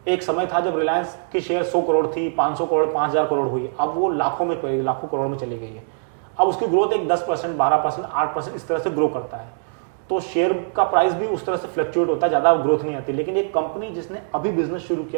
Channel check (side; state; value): left; silent; digital silence